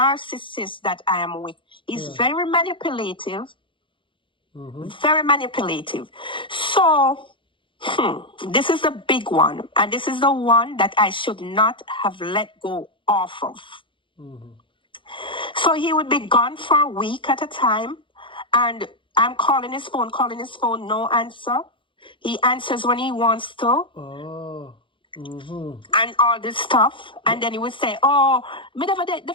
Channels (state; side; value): late; right; 0.25 ms